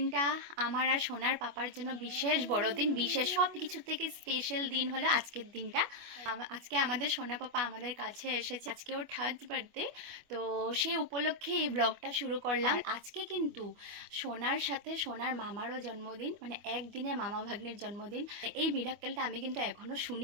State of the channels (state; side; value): late; left; 25 ms